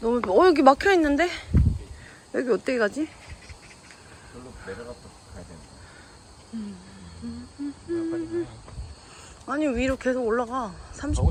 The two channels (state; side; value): identical; both; correlation 1.00